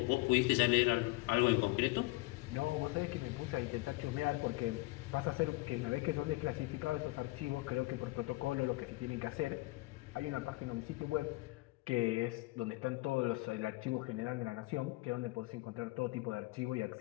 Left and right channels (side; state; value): right; quieter; 21.9 dB